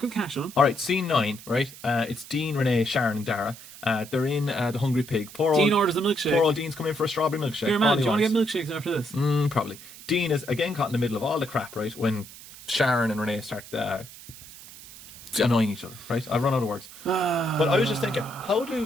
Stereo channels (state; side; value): noise; right; hiss, 17 dB below the sound